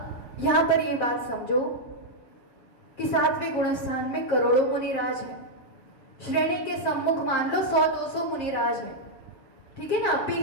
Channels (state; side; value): late; right; 7.5 ms